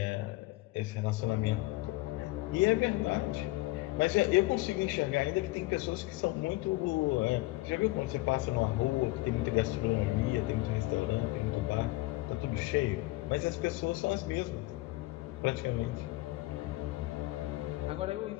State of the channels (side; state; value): right; quieter; 19.8 dB